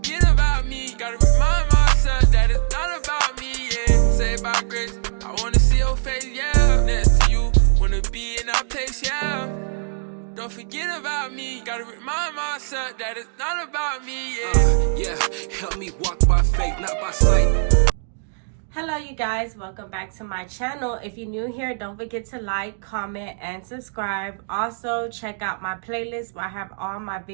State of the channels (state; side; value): silent; left; digital silence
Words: about me, gotta remind myself that it's not about me, yeah. Saved by grace, I wanna see your face, yeah. Next to you, wanna be in that place, yeah. Don't forget about me, gotta remind myself that it's not about me, yeah. Help me walk by faith, not by sight. Hello you guys, welcome back to my channel. If you're new here, don't forget to like, comment, and subscribe. Also, check out my playlist where I have all my